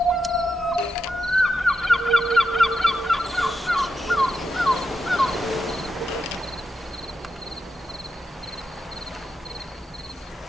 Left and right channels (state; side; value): normal; both; correlation 0.86